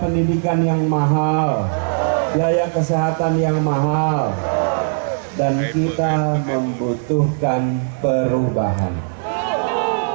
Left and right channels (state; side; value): silent; left; 55 dB below the other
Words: yang mahal, biaya kesehatan yang mahal, dan kita membutuhkan perubahan.